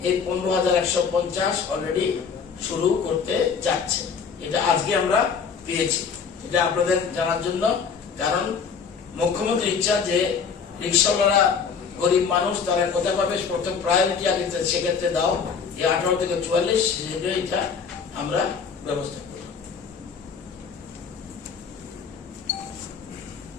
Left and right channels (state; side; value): quieter; right; 6.1 dB